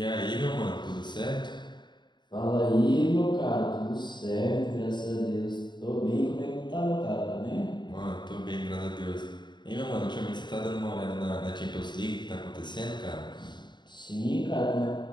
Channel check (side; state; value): right; late; 0.22 ms